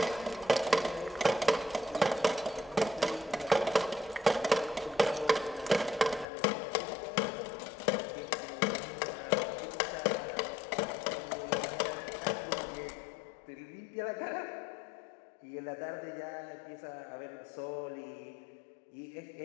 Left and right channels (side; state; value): right; drops out; at 6.2 s